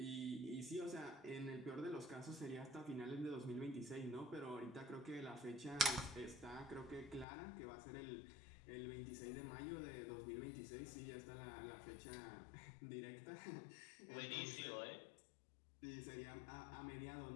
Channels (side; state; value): right; drops out; at 7.2 s